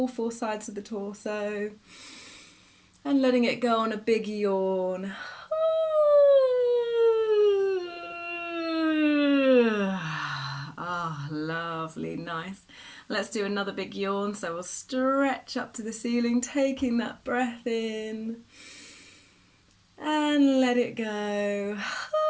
four sides of the torso, and letting it go on a big yawn. Lovely, nice. Let's do another big yawn, so we'll stretch up to the ceiling, taking that breath in and let it go.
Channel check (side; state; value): both; identical; correlation 1.00